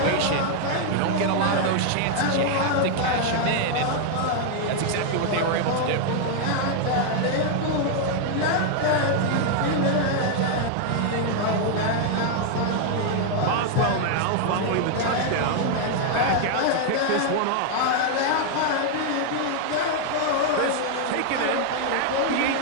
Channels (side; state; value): both; different; correlation 0.00